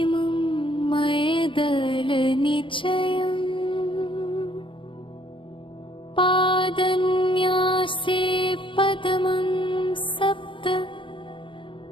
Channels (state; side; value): late; right; 0.25 ms